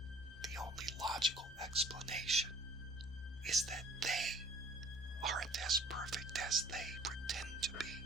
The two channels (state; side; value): normal; both; correlation 0.53